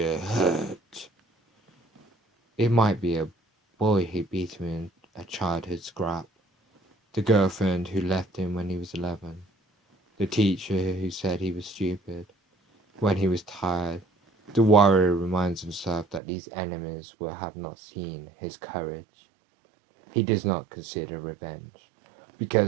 hurt. It might be a boy who beat him in a childhood scrap, the girlfriend who left him when he was 11, the teacher who said he was stupid. When he was tired, the warrior reminds himself that these enemies will have not seen his courage. He does not consider revenge,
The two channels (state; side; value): drops out; left; at 16.2 s